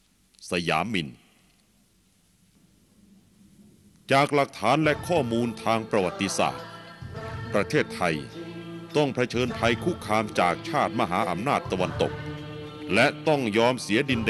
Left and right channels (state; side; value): identical; both; correlation 1.00